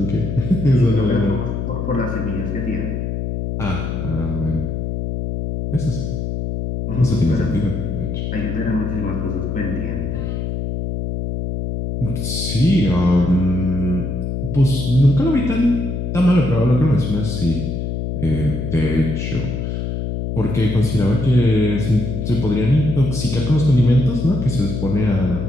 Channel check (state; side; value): noise; left; hum, 3 dB below the sound